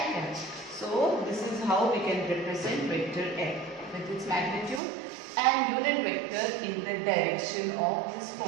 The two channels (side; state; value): left; drops out; at 4.8 s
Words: cap. So this is how we can represent vector F with its magnitude and unit vector in the direction of this